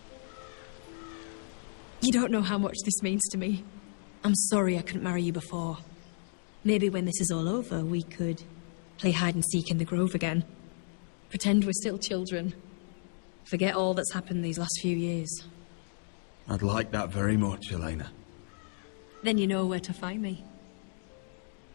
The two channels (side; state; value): right; silent; 56 dB below the other